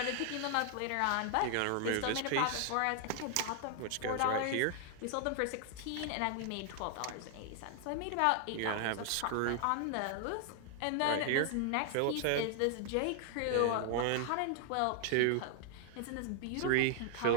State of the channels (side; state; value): both; different; correlation 0.00